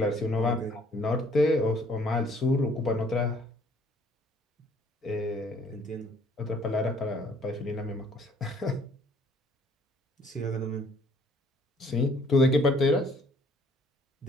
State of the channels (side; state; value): both; normal; correlation 0.60